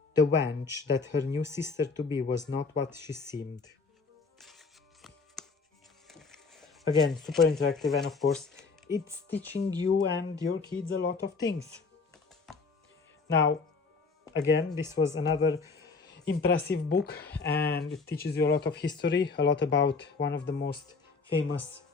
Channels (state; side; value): quieter; right; 4.5 dB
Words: wench that her new sister-to-be was not what she seemed. Again, super interactive, and of course, it's teaching you and your kids a lot of things. Now, again, this was another impressive book, and it teaches you a lot of history, a lot about one of the most famous